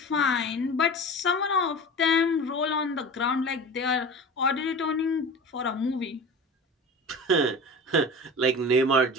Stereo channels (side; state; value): both; normal; correlation 0.34